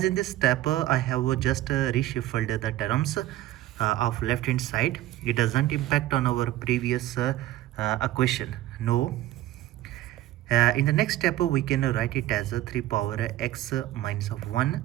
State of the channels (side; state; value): left; quieter; 14.6 dB